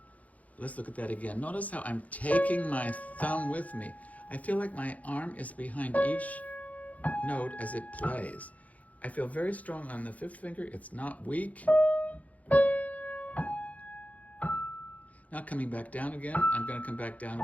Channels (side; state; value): right; late; 0.071 ms